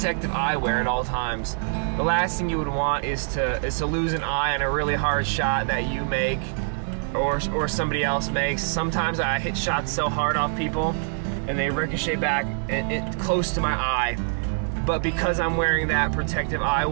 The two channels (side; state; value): left; silent; digital silence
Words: eyewear at all times. The last thing you would want is to lose an eye on a really hard shot that you make or somebody else makes. Sometimes I hit shots so hard off people and they ricochet back close to my eye. But because I'm wearing that protective